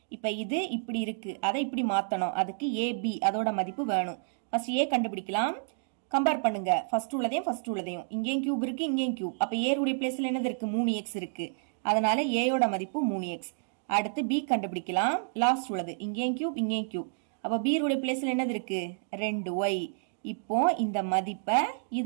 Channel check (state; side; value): silent; left; digital silence